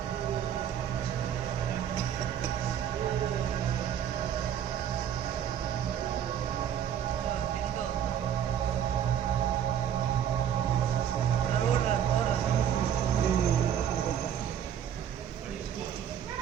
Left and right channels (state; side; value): quieter; left; 9.3 dB